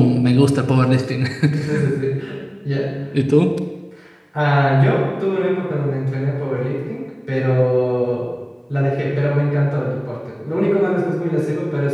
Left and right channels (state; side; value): identical; both; correlation 1.00